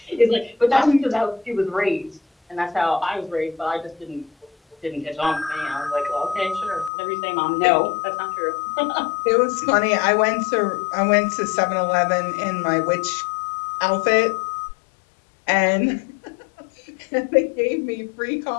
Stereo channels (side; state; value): right; drops out; at 6.9 s